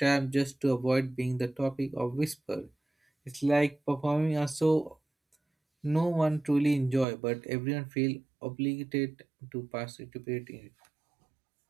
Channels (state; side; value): drops out; left; at 7.1 s